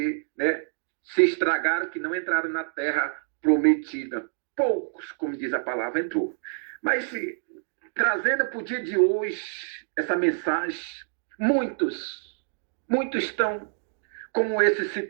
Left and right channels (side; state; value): left; silent; digital silence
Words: né, se estragaram, que não entraram na terra prometida. Poucos, como diz a palavra, entrou. Mas, trazendo para o dia de hoje essa mensagem, muitos estão como esse